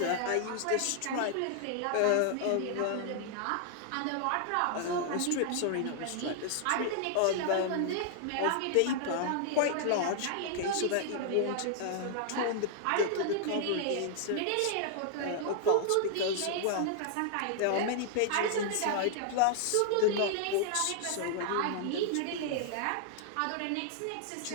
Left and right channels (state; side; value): different; both; correlation -0.01